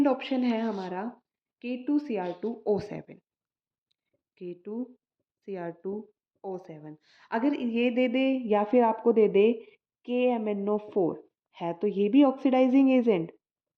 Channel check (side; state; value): both; identical; correlation 1.00